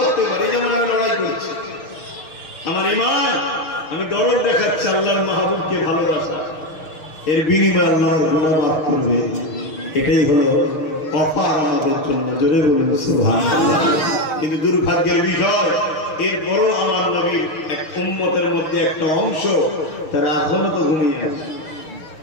পারি, যেমন আমি লড়াই করছি, আমার ঈমান, আমি দরদ দেখাচ্ছি আল্লাহর মাহবুবকে ভালোবাসা, এর বিনিময়ে আল্লাহর গুনাহ মাফ করবে। এটাই হলো অফার আমাদের জন্য। জোরে বলুন সুবহানাল্লাহ। কিন্তু দুর্ভাগ্যের বিষয়, এরপরও আমার নবীর এক উম্মতের মধ্যে একটা অংশ তারা এখনো তো ঘুমিয়ে আছে।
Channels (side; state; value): right; late; 6.4 ms